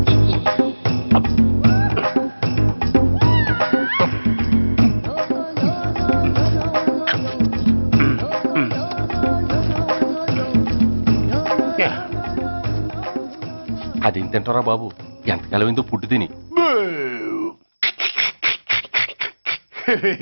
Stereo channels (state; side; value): inverted; both; correlation -1.00